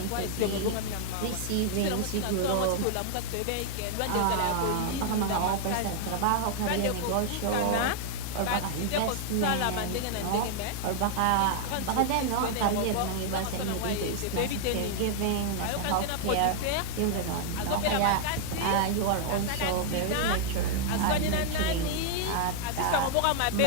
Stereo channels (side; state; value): both; different; correlation 0.00